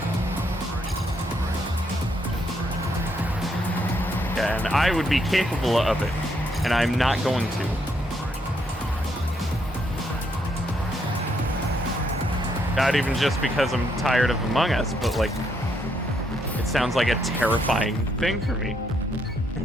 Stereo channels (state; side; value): normal; both; correlation 0.75